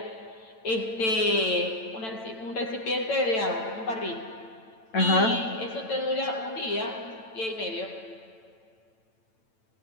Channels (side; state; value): right; late; 9.0 ms